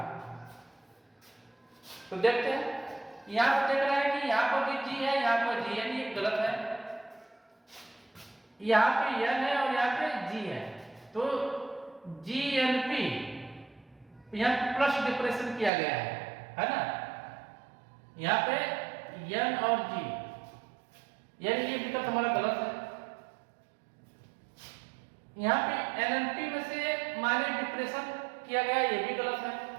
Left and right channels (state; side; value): drops out; left; at 15.7 s